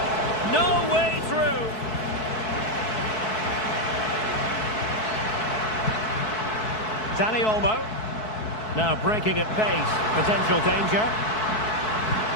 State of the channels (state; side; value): late; right; 4.6 ms